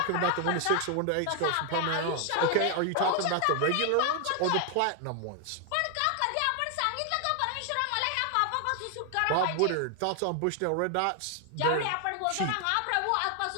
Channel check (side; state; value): both; different; correlation 0.00